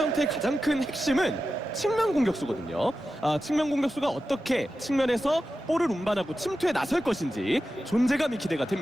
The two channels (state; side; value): normal; both; correlation 0.92